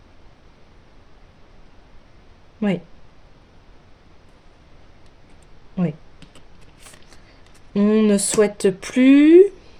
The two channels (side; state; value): both; identical; correlation 1.00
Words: Oui, oui. On ne souhaite plus